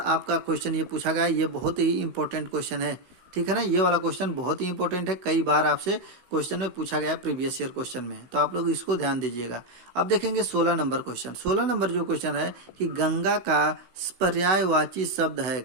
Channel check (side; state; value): left; late; 16 ms